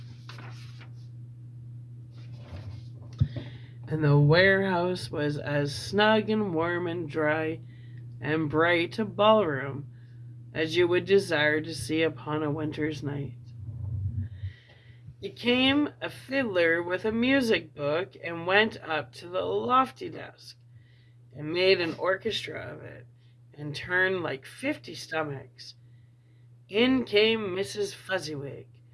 And the warehouse was as snug and warm and dry and bright a ballroom as you would desire to see upon a winter's night. It came a fiddler with a music book and went up to the lofty desk and made an orchestra of it and turned like 50 stomachs. In came Mrs. Fezziwig,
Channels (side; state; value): both; identical; correlation 1.00